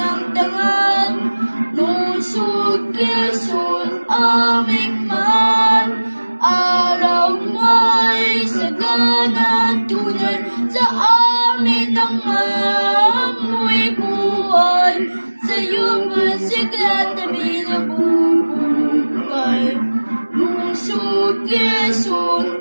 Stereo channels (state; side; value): inverted; both; correlation -1.00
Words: dangal. Lusog, Quezon, aming mahal. Araw mo'y sagana tunay sa amin ang amoy buhay. Sa'yo masigla tabi na bubukay. Lusog, Quezon,